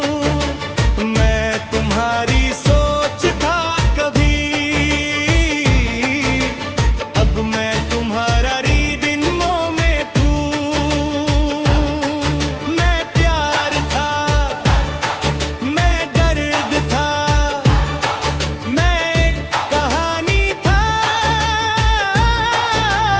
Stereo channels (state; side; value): identical; both; correlation 1.00